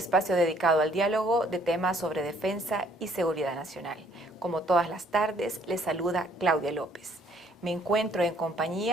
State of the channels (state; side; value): normal; both; correlation 0.63